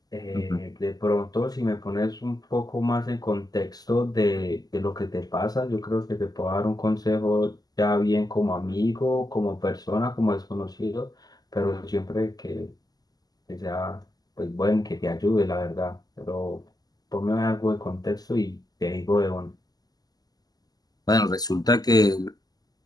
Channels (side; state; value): right; late; 0.19 ms